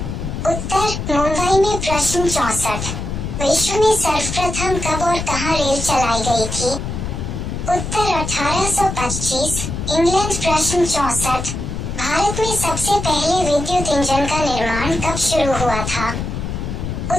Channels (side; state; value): left; noise; rumble, 5 dB below the sound